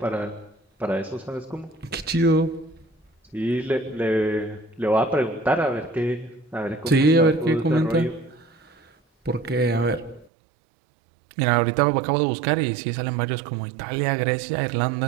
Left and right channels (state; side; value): drops out; left; at 10.3 s